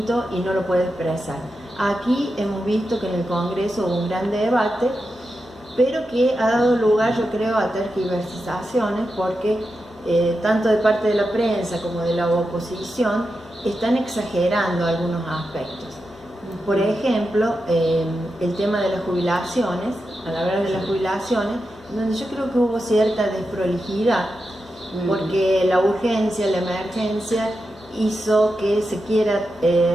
y no lo puede expresar. Aquí hemos visto que en el Congreso hubo un gran debate, pero que ha dado lugar, yo creo, a tergiversaciones, porque tanto de parte de la prensa como de la oposición están exagerando algunos aspectos. Por ejemplo, el tema de las jubilaciones, al hablar de las jubilaciones, donde yo creo que hubo cierta desprolijidad, porque la urgencia, la emergencia hizo que se quiera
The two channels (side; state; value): left; noise; hum, 27 dB below the sound